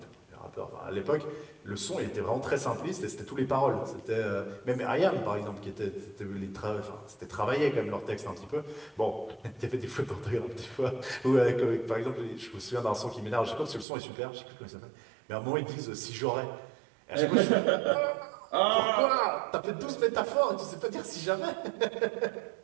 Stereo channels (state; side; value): drops out; left; at 13.9 s